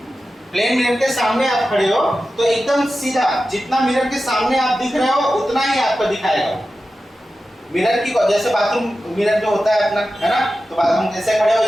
प्लेन मिरर के सामने आप खड़े हो, तो एकदम सीधा जितना मिरर के सामने आप दिख रहे हो उतना ही आपको दिखाएगा। मिरर की, जैसे बाथरूम मिरर जो होता है अपना, है ना, तो बाथरूम जैसे खड़े हो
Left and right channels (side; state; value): both; normal; correlation 0.93